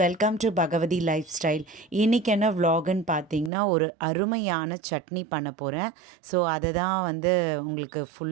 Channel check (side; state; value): left; drops out; at 3.5 s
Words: welcome to Bhagavathi lifestyle. இன்றைக்கி என்ன vlogன்னு பார்த்தீங்கன்னா, ஒரு அருமையான சட்னி பண்ண போகிறேன். ஸோ அதை தான் உங்களுக்கு